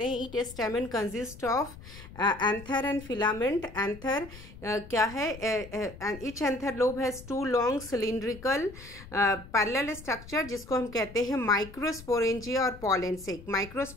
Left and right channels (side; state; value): left; noise; rumble, 17 dB below the sound